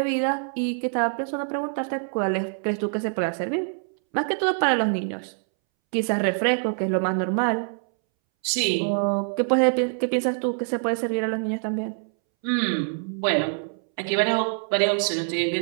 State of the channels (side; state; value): left; silent; 62 dB below the other